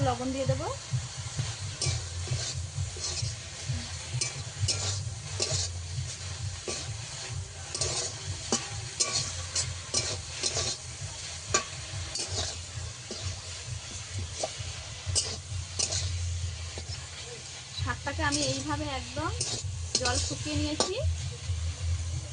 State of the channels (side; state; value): both; identical; correlation 1.00